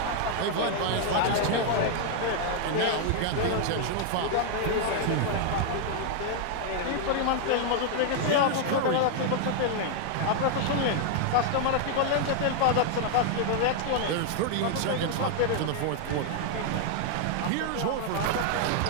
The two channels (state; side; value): different; both; correlation 0.00